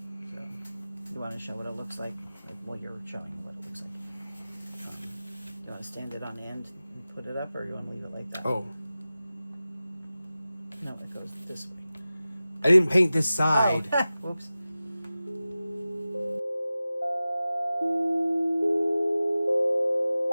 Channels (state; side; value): inverted; both; correlation -0.95